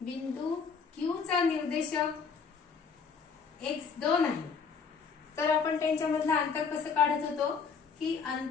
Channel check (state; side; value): quieter; right; 5.7 dB